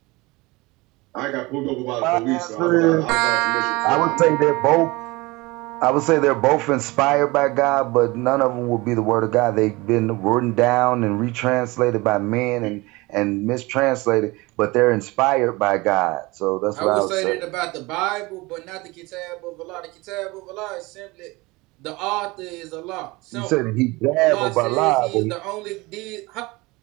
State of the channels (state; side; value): quieter; left; 22.9 dB